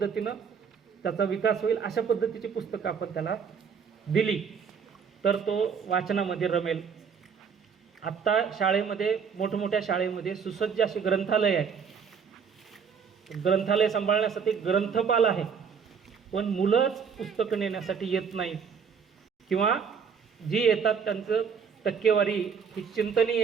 त्याचा विकास होईल अशा पद्धतीची पुस्तकं आपण त्याला दिली तर तो वाचनामध्ये रमेल. आत्ता शाळेमध्ये मोठमोठ्या शाळेमध्ये सुसज्ज अशी ग्रंथालय आहे. ग्रंथालय सांभाळण्यासाठी ग्रंथपाल आहे, पण मुलंच पुस्तकं नेण्यासाठी येत नाहीत किंवा जी येतात त्यांचं टक्केवारी ही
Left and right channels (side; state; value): left; quieter; 6.6 dB